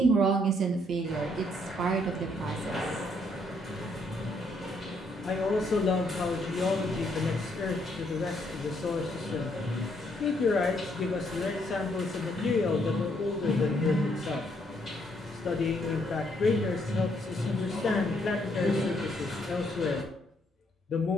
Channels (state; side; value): normal; both; correlation 0.71